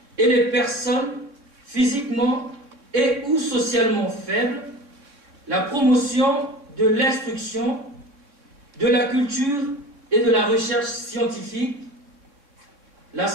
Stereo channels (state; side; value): late; left; 3.6 ms